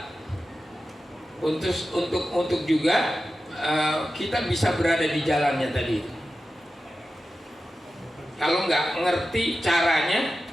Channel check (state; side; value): normal; both; correlation 0.92